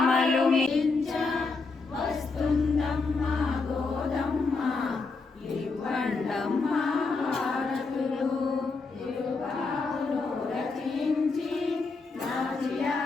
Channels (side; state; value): right; quieter; 4.1 dB